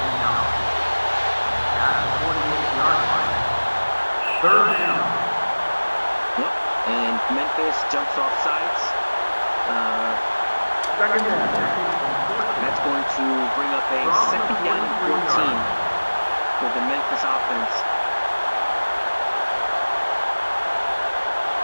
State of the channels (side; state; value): both; inverted; correlation -1.00